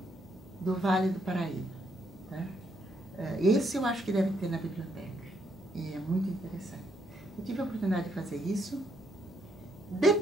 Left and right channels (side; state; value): left; noise; hum, 27 dB below the sound